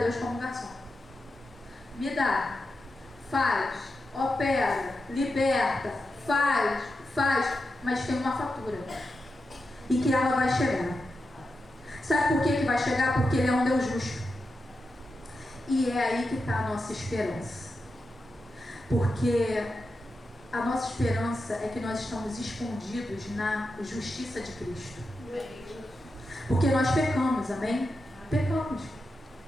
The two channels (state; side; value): normal; both; correlation 0.89